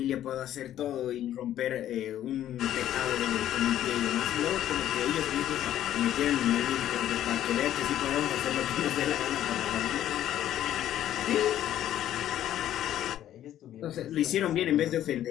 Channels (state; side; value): quieter; right; 11.9 dB